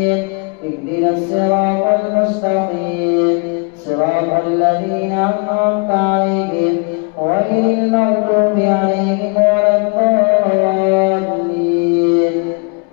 اهدنا الصراط المستقيم صراط الذين أنعمت عليهم غير المغضوب عليهم ولا الضالين.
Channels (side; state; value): right; quieter; 33.6 dB